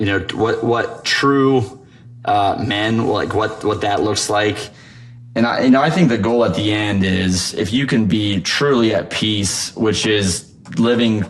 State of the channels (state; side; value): identical; both; correlation 1.00